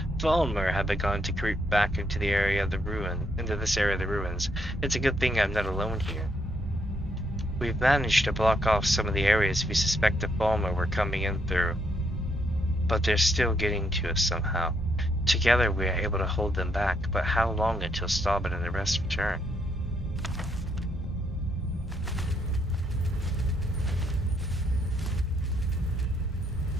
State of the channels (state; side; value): normal; both; correlation 0.75